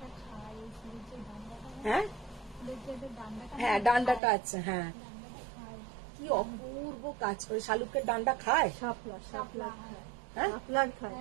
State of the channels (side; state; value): left; drops out; at 4.2 s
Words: হ্যাঁ হ্যাঁ, ডান্ডাটা আছে, হ্যাঁ। কি অপূর্ব কাজ করে, শালুকের ডান্ডা খায়, শাপলা হ্যাঁ খায়।